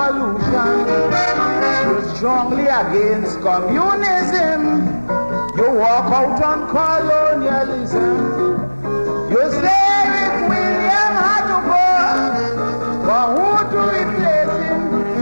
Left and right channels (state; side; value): inverted; both; correlation -1.00